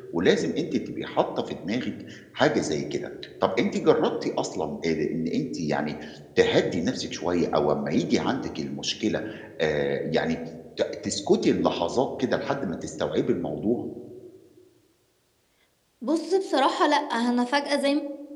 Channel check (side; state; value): both; identical; correlation 1.00